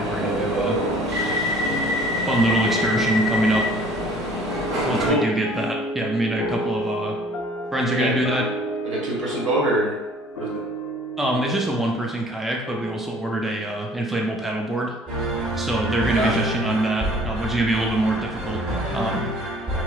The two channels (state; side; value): normal; both; correlation 0.54